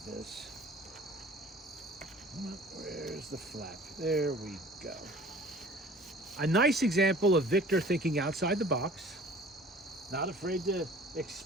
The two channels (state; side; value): normal; both; correlation 0.47